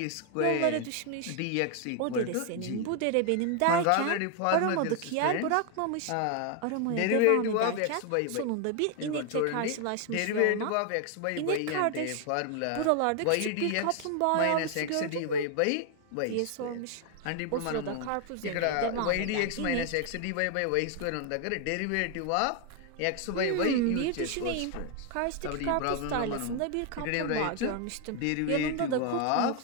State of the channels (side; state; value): both; different; correlation 0.00